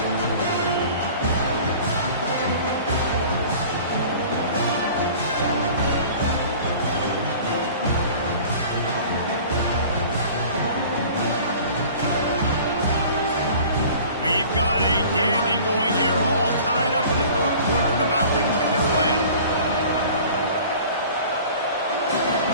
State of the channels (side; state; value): both; inverted; correlation -0.44